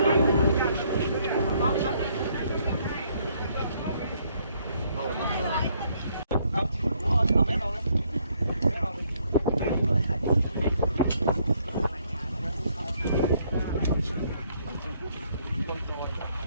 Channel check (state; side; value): inverted; both; correlation -0.68